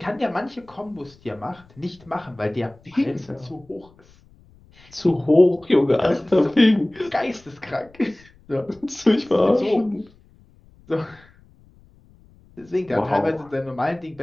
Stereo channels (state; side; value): noise; left; rumble, 28 dB below the sound